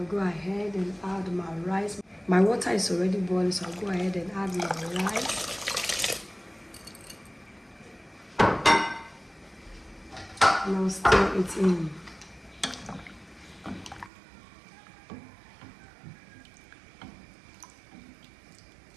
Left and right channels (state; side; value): drops out; left; at 14.1 s